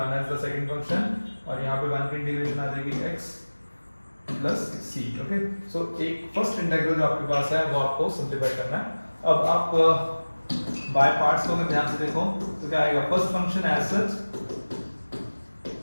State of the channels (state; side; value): inverted; both; correlation -1.00